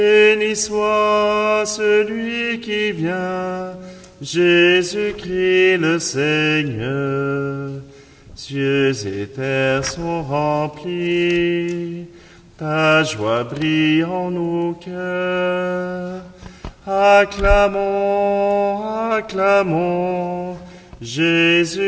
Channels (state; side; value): identical; both; correlation 1.00